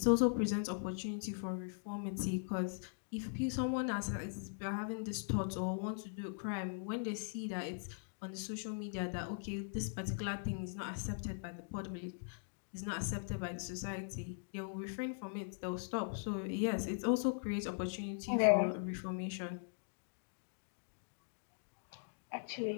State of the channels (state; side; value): silent; right; digital silence